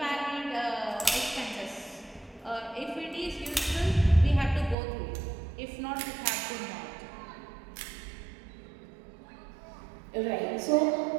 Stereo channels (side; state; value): left; drops out; at 4.8 s